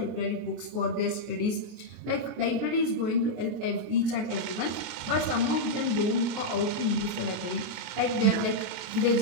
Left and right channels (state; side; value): late; left; 23 ms